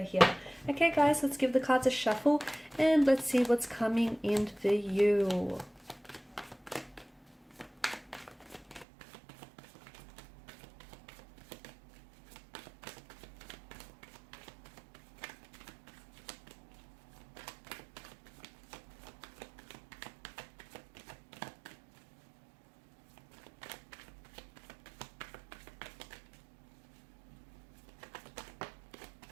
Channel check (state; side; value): drops out; left; at 8.8 s